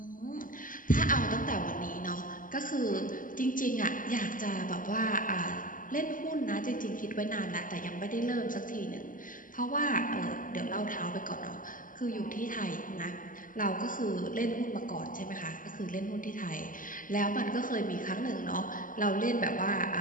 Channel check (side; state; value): right; late; 0.39 ms